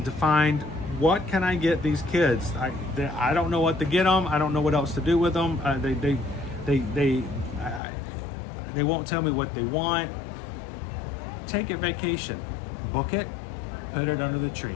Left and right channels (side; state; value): right; drops out; at 7.8 s